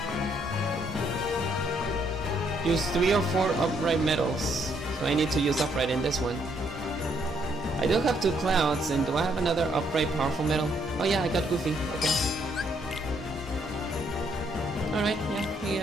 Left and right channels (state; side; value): normal; both; correlation 0.71